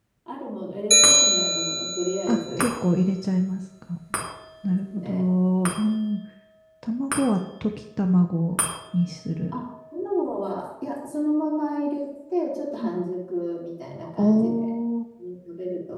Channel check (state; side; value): identical; both; correlation 1.00